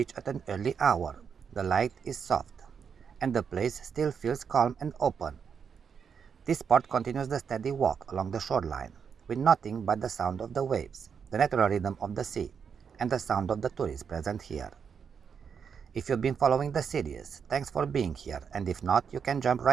at an early hour, the light is soft, and the place still feels calm and open. This part continues the steady walk along the shoreline, with nothing but the sound of the waves, the natural rhythm of the sea, and the sound of the tourists present here. If you've been following the series, thanks for being here, and if not, you can jump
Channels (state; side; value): quieter; left; 6.8 dB